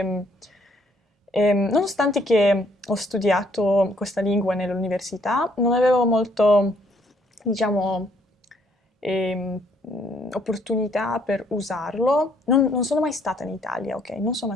nonostante che ho studiato questa lingua nell'università, non avevo molto, diciamo, opportunità per usarlo. Non sono mai stata in Italia, ok? Non sono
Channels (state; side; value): normal; both; correlation 0.66